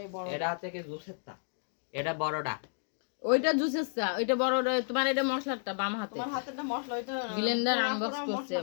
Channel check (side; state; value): right; silent; digital silence